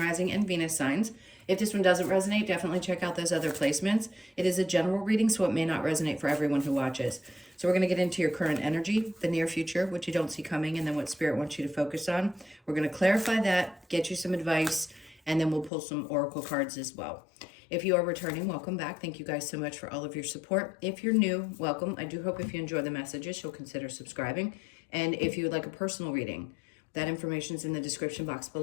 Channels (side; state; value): right; drops out; at 15.7 s